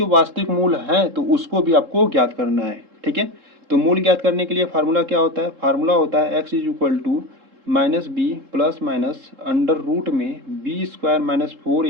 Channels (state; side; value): late; left; 3.7 ms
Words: वास्तविक मूल हैं तो उसको भी आपको ज्ञात करना है, ठीक है। तो मूल ज्ञात करने के लिए फार्मूला क्या होता है, फार्मूला होता है x is equal to minus B plus minus under root में b² माइनस